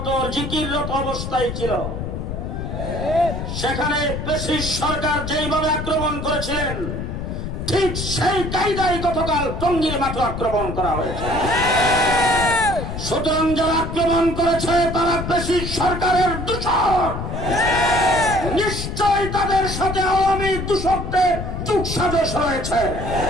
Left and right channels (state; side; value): noise; left; rumble, 5 dB below the sound